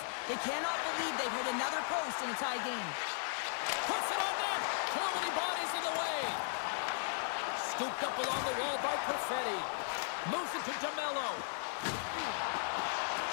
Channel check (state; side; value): silent; right; digital silence